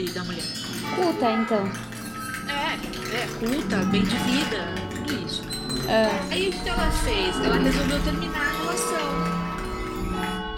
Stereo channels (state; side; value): identical; both; correlation 1.00